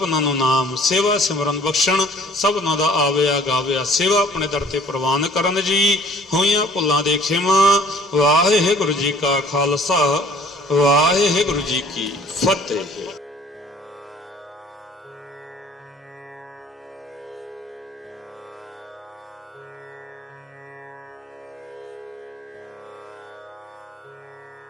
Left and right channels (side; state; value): both; normal; correlation 0.55